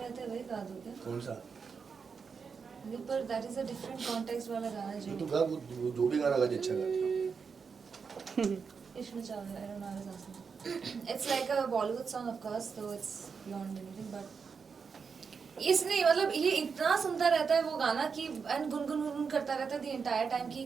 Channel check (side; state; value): left; quieter; 5.7 dB